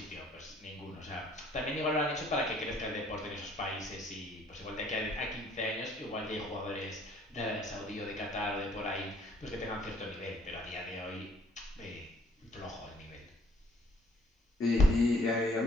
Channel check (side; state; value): both; normal; correlation 0.61